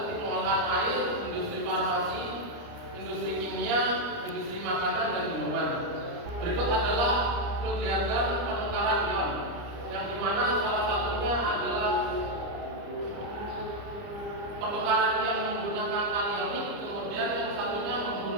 pengolahan air, industri farmasi, industri kimia, industri makanan, dan minuman. Berikut adalah flow diagram pertukaran ion, yang dimana salah satunya adalah pertukaran ion menggunakan kanionik, kemudian yang satunya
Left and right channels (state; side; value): late; left; 30 ms